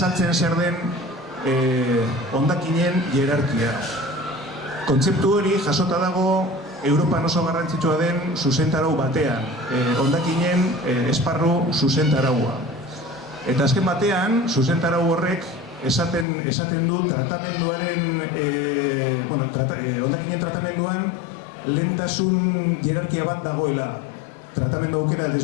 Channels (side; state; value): right; drops out; at 16.2 s